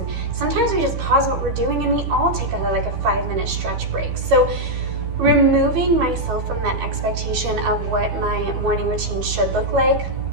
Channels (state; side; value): late; left; 13 ms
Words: sometimes we just pause what we're doing and we all take a 5-minute stretch break. So removing myself from that expectation of what my morning routine should look like,